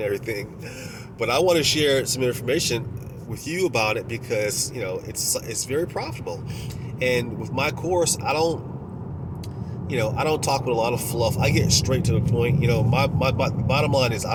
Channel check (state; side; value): identical; both; correlation 1.00